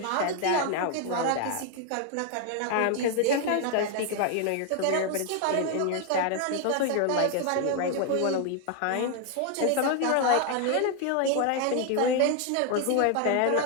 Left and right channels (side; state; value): both; different; correlation 0.01